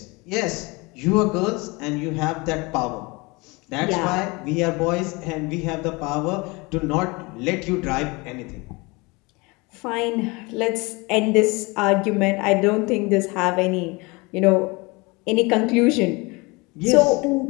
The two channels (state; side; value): quieter; right; 25.9 dB